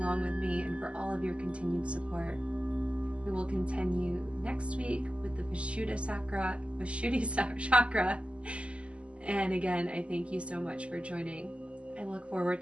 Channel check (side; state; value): left; late; 0.056 ms